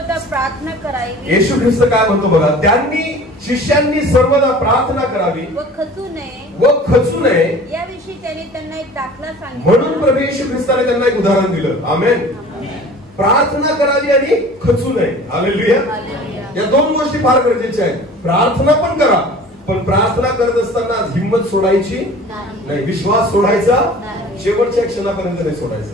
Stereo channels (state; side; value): normal; both; correlation 0.44